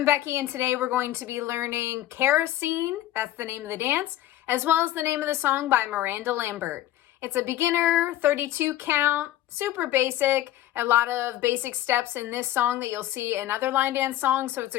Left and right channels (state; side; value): quieter; right; 13.7 dB